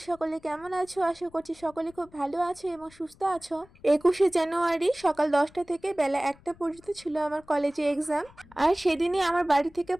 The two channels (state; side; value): noise; left; rumble, 26 dB below the sound